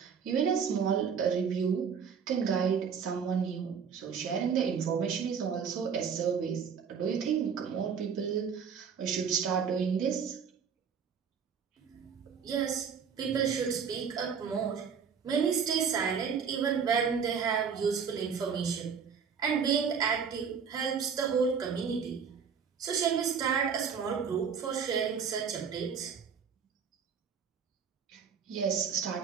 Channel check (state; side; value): quieter; left; 6.7 dB